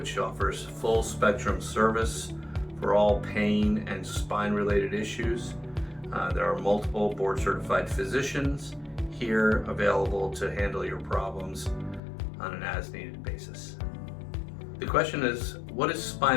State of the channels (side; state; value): right; drops out; at 12.0 s